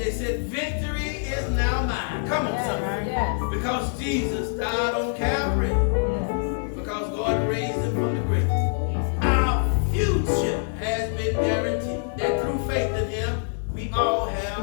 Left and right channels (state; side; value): silent; right; 62 dB below the other